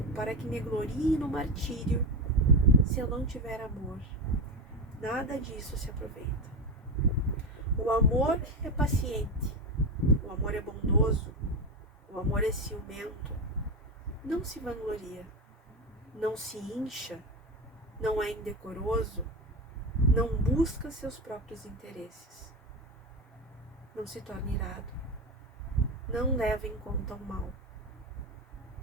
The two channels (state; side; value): normal; both; correlation 0.17